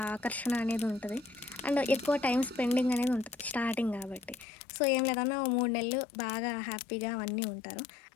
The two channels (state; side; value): drops out; right; at 4.5 s